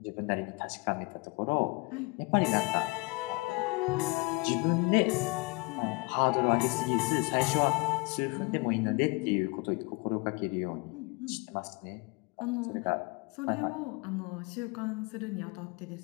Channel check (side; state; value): right; quieter; 27.1 dB